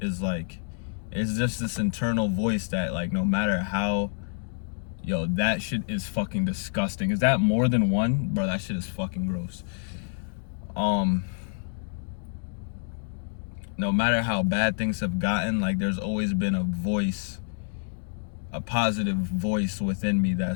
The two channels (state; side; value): silent; right; digital silence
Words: is like, it's just this internal voice that, like, no matter how, yo, that shit is fucking disgusting. Is that more than one? Bro, that shit is fucking gross. No matter how bad things have gotten, like, there's always been a voice, a positive voice within me